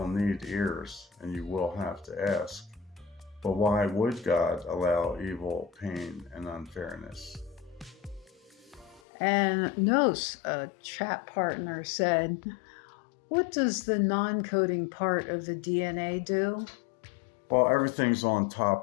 need ears, and you will have to ask. But why would God allow evil, pain, and unfairness? And Nos, a chat partner, said, what does the non-coding part of the DNA do? Well, everything's on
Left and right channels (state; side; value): drops out; right; at 9.0 s